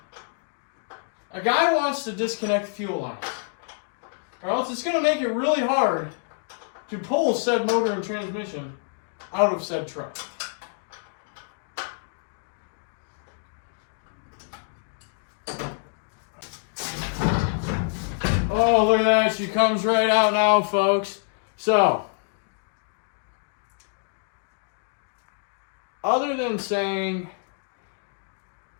a guy wants to disconnect the fuel lines, or else it's going to make it really hard to pull said motor and transmission out of said truck. Oh, look at that. She comes right out now, folks. So, other than saying,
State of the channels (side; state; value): right; silent; 60 dB below the other